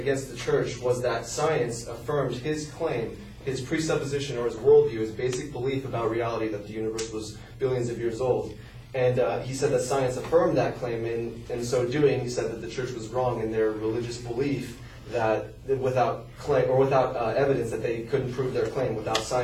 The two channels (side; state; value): both; identical; correlation 1.00